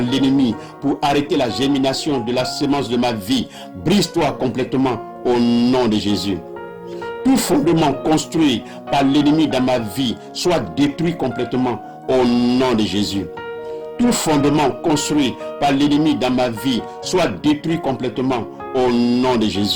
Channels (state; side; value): identical; both; correlation 1.00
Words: l'ennemi pour arrêter la germination de la semence de ma vie, brise-toi complètement au nom de Jésus. Tout fondement construit par l'ennemi dans ma vie soit détruit complètement au nom de Jésus. Tout fondement construit par l'ennemi dans ma vie soit détruit complètement au nom de